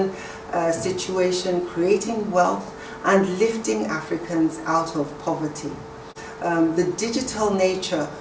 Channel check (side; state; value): both; identical; correlation 1.00